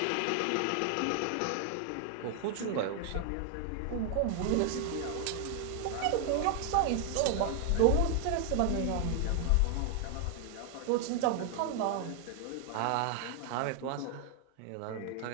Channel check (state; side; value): different; both; correlation 0.00